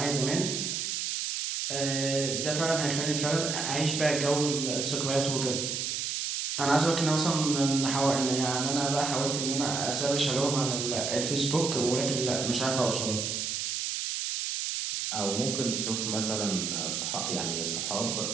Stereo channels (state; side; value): noise; right; hiss, 2 dB below the sound